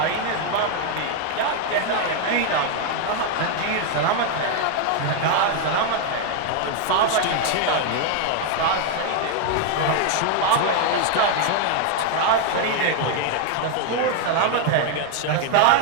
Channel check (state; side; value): different; both; correlation 0.00